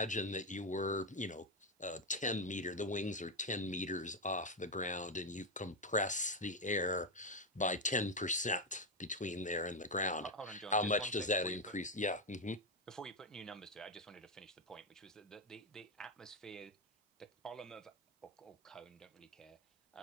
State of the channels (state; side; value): normal; both; correlation 0.07